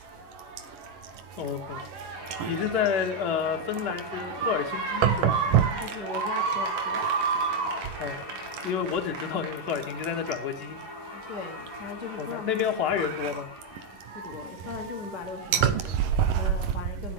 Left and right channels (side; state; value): left; late; 11 ms